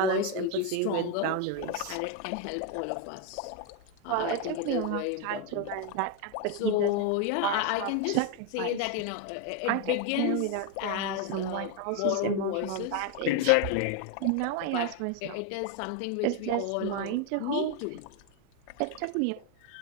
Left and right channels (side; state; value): both; different; correlation 0.01